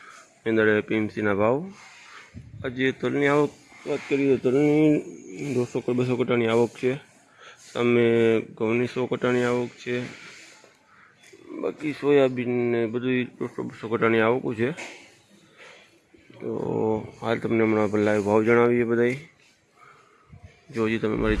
મેંદડે પીએમસીના ભાવ. આજે તલની આવક વાત કરીએ તો તલની 200-200 કટાની આવક છે. સામે ઘઉંની 100 કટાની આવક છે. બાકી સોયાબીન ને બધું 200-200 કટાની આવક છે. તો હાલ તમને હમણાં લાઈવ ભાવ જણાવીએ બધાય. જો હજી તમે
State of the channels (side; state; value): both; identical; correlation 1.00